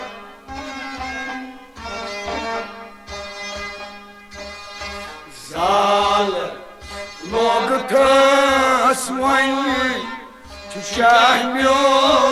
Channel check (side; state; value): both; identical; correlation 1.00